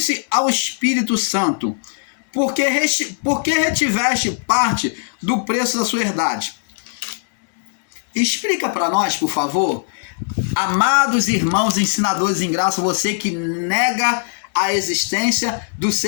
ao Espírito Santo? Por que retiveste parte do preço da sua herdade? Explica para nós, por favor. Amados irmãos ensinadores em graça, você que nega a existência do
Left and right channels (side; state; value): right; silent; digital silence